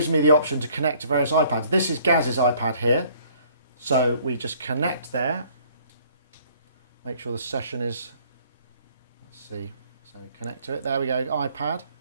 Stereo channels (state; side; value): inverted; both; correlation -0.59